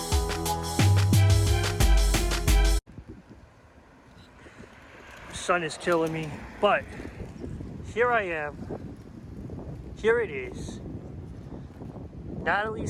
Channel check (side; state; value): both; identical; correlation 1.00